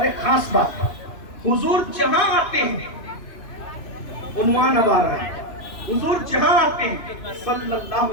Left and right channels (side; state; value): right; late; 3.0 ms